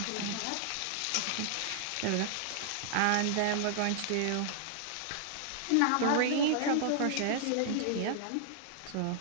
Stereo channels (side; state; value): both; different; correlation -0.01